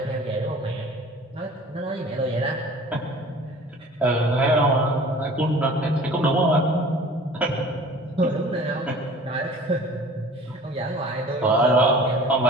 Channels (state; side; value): normal; both; correlation 0.45